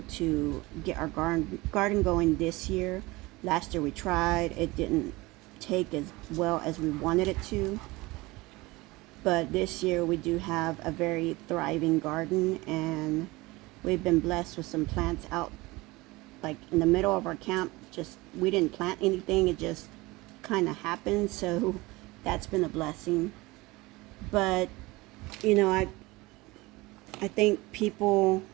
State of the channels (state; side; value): quieter; left; 21.9 dB